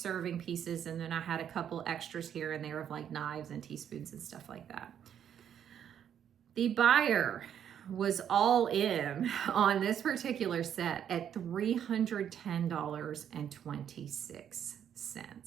pieces, and then I had a couple extras here and there of like knives and teaspoons and stuff like that. The buyer was all in on this particular set at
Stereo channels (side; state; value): left; quieter; 9.2 dB